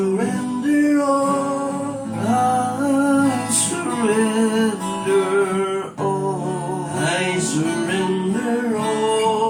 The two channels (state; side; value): identical; both; correlation 1.00